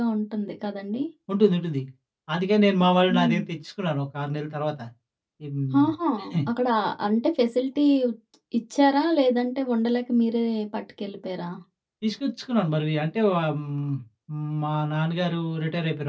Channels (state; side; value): identical; both; correlation 1.00